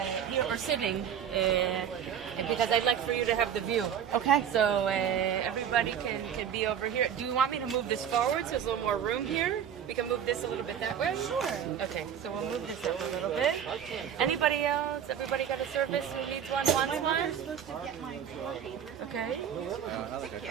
here or sitting, because I'd like for you to have the view. Okay. So everybody can be over here. Do you want me to move this forward so there's a little more room here? We can move this a little bit that way? Sure. Okay, so we'll move this up a little bit. Anybody else? Everybody got a service who needs one? My mother's supposed to get my tour paper. Okay. Thank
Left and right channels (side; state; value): left; quieter; 8.7 dB